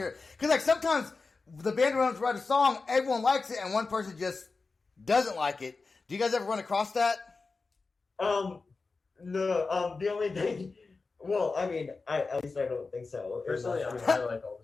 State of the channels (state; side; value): quieter; right; 4.1 dB